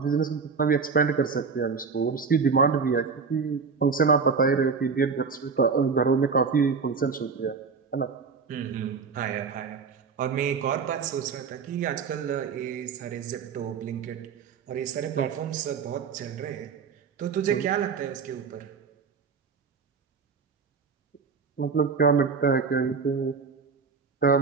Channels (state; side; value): quieter; left; 5.4 dB